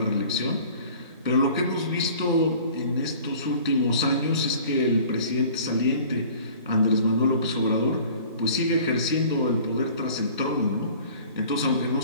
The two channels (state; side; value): inverted; both; correlation -0.48